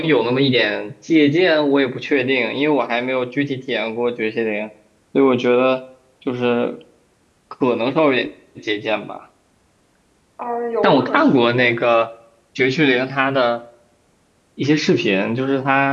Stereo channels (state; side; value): identical; both; correlation 1.00